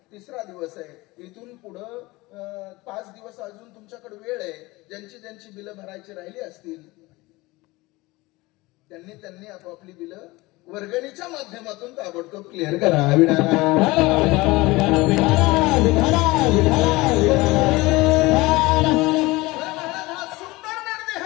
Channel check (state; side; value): quieter; right; 21.5 dB